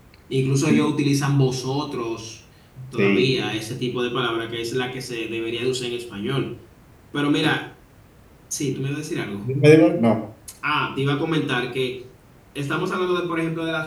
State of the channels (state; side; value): identical; both; correlation 1.00